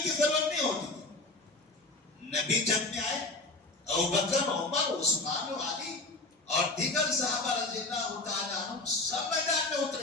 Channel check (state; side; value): quieter; right; 3.0 dB